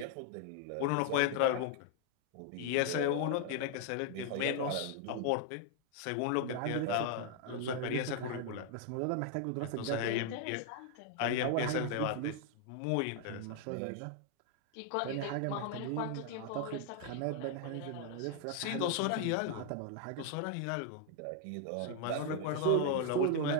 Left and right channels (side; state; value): both; different; correlation 0.00